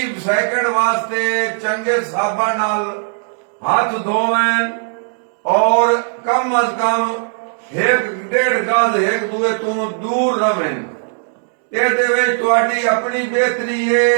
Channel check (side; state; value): left; silent; digital silence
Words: سیکنڈ واسطے چنگے صابن نال ہاتھ دھویں اور کم از کم 1.5 گز ایک دوے تو دور رہیں. یہ دے تواڈی اپنی بہتری ہے،